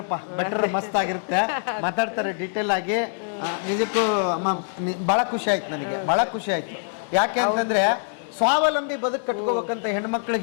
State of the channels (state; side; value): silent; right; digital silence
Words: ಬೆಟರ್ ಮಸ್ತ್ ಆಗಿರುತ್ತೆ. ಮಾತಾಡ್ತಾರೆ ಡೀಟೇಲ್ ಆಗಿ. ನಿಜಕ್ಕೂ ಬಹಳ ಖುಷಿ ಆಯ್ತು, ನನಗೆ ಬಹಳ ಖುಷಿ ಆಯ್ತು. ಯಾಕೆ ಅಂತಂದ್ರೆ ಸ್ವಾವಲಂಬಿ ಬದುಕು ಕಟ್ಕೋಬೇಕಂತ